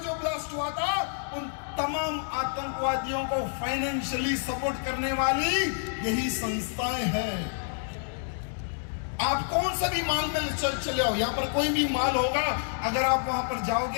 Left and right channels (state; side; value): silent; right; digital silence